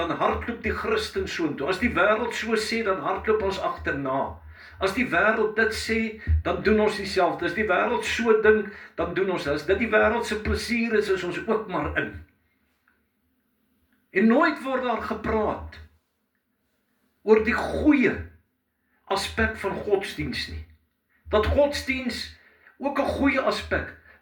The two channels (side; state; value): both; identical; correlation 1.00